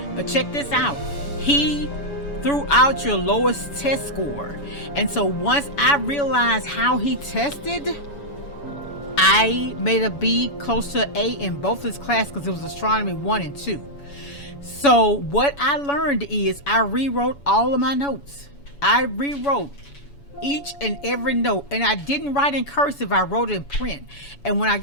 But check this out. He threw out your lowest test score. And so once I realized how he tested, I made a B, close to A in both his classes, because it was astronomy 1 and 2. So what I learned is I rewrote all of my notes. I rewrote each and every note, and I didn't write in cursive. I wrote it in print. And when I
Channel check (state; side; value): late; right; 7.0 ms